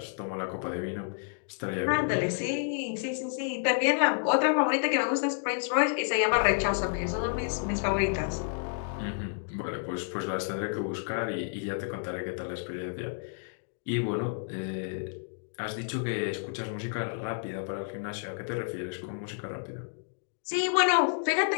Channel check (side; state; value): right; silent; digital silence